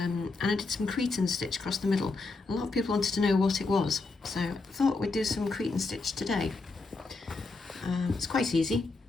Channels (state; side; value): quieter; right; 3.6 dB